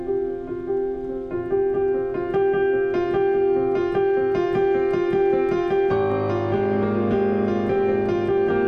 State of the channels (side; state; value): both; identical; correlation 1.00